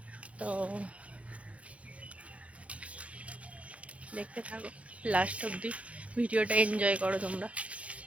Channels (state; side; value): late; left; 0.064 ms